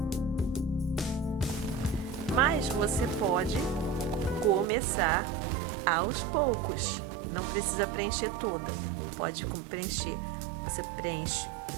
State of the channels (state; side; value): drops out; left; at 4.7 s